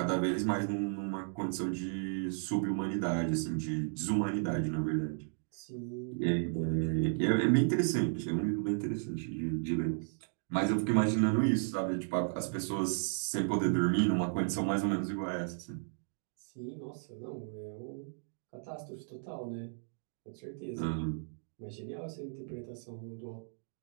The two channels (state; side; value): silent; left; digital silence